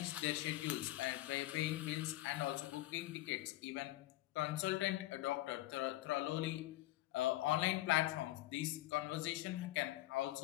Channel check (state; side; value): quieter; right; 16.5 dB